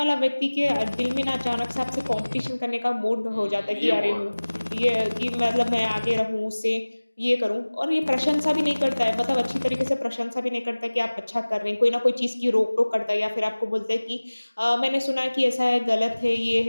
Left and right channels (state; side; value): inverted; both; correlation -1.00